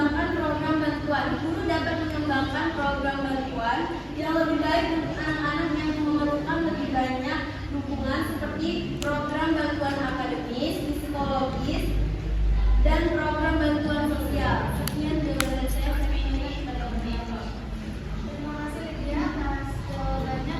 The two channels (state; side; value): identical; both; correlation 1.00